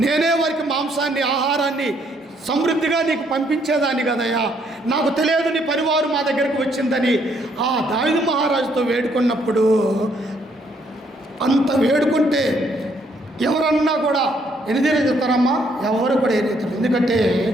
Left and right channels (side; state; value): both; normal; correlation 0.69